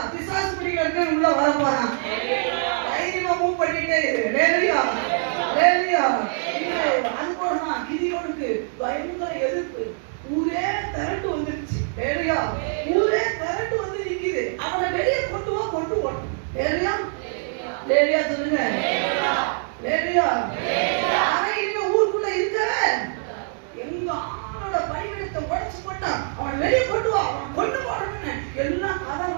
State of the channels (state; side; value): silent; left; 63 dB below the other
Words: பிசாசு பிடிக்கிறதுக்கு உள்ள வர போறான். தைரியமா மூவ் பண்ணிட்டே இரு. ஹalleluya ஹalleluya. அது போறதான் கிதியோனுக்கு பயங்கர எதிர்ப்பு. ஊரே திரண்டு வந்துருச்சு. ஹalleluya. ஊரே திரண்டு வந்து நிக்குது. அவனை வெளியே கொண்டு வா கொண்டு போறோம். ஹalleluya ஹalleluya சொல்லுங்க. ஹalleluya ஹalleluya. அவன் இனிமே ஊருக்குள்ள இருக்கவே எங்க ஆளோட பணிவிடத்தை உடைச்சு போட்டான். அவனை வெளியே கொண்டு வா, அவனை கொண்டு போறோம்னு எல்லாம்